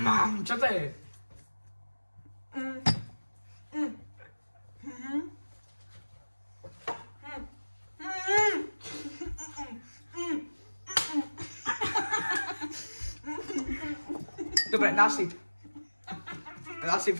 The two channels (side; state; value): both; inverted; correlation -1.00